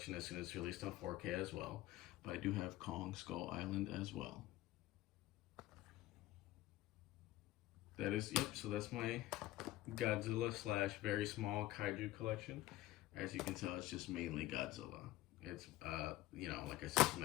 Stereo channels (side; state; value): right; quieter; 16.4 dB